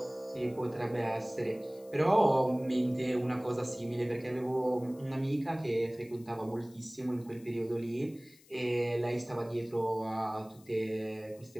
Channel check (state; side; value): noise; left; hiss, 26 dB below the sound